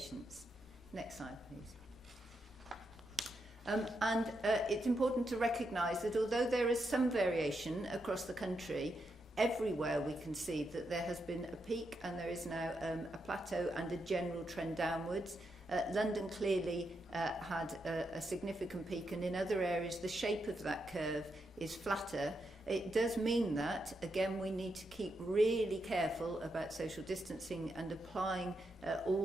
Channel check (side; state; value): both; normal; correlation 0.83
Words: Next slide, please. It's important to recognise that although there is some variation across the country, everywhere we can see that there has been a peak and there is now a plateau and a general trend downwards. London clearly had a significant peak, and in other areas the shape of that curve is flatter. It does mean that, again, we need to keep really careful about social distancing and applying